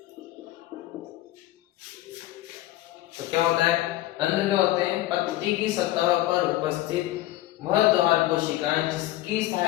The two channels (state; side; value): quieter; right; 15.6 dB